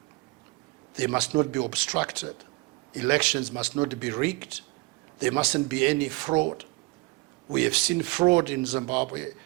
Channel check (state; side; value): quieter; left; 25.2 dB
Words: They must not be obstructed. Elections must not be rigged. There mustn't be any fraud. We have seen fraud in Zimbabwe.